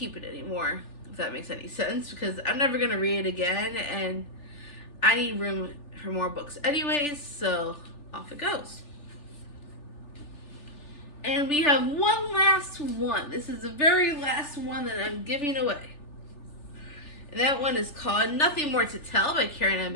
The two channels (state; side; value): late; right; 3.4 ms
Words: it anymore, if that makes any sense, because I'm never going to read it again, and I need room for more books anyways, so off it goes. And we have one last one. This is the very last one that I'm giving away. And that one is called Nothing More to Tell by Karen M.